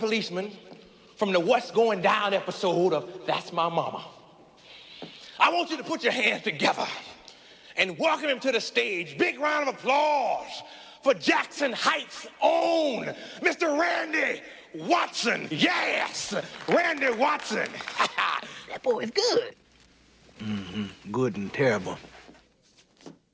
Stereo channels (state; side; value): identical; both; correlation 1.00